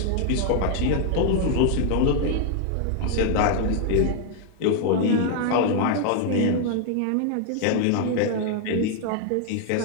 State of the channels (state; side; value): different; both; correlation 0.00